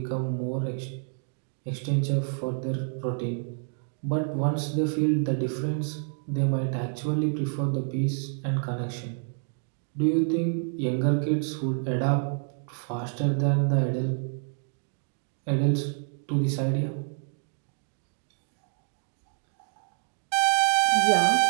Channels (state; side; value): silent; left; 56 dB below the other